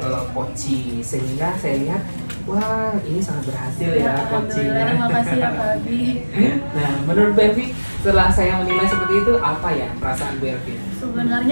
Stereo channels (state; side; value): inverted; both; correlation -1.00